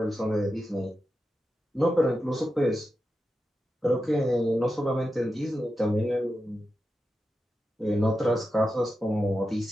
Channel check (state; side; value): normal; both; correlation 0.90